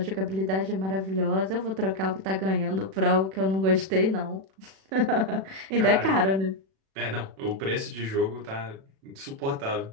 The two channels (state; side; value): late; left; 37 ms